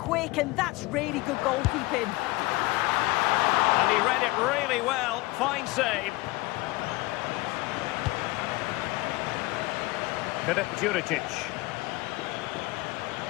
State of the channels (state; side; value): quieter; right; 21.3 dB